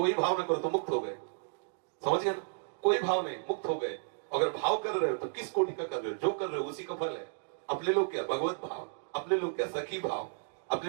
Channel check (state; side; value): silent; left; digital silence